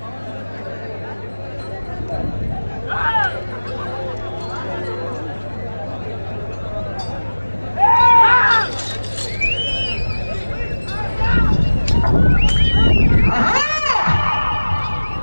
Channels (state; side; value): inverted; both; correlation -1.00